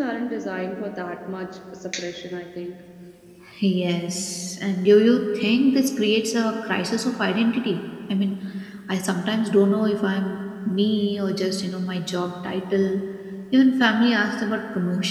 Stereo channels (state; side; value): identical; both; correlation 1.00